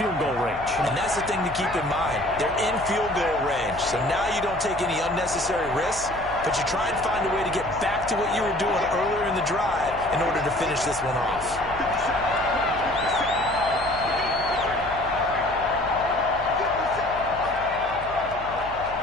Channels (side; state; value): left; noise; hum, 16 dB below the sound